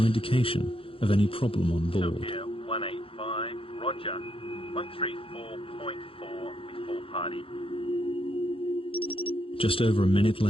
indication of any problem on board. SilkAir 185, roger. 134.4 with full party. Just over a minute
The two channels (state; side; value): late; right; 0.27 ms